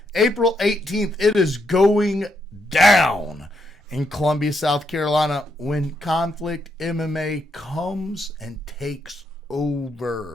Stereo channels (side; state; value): both; normal; correlation 0.78